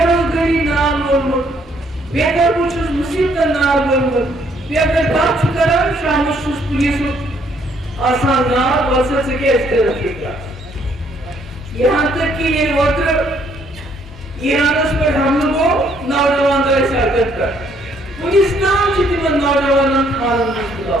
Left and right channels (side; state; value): both; normal; correlation 0.67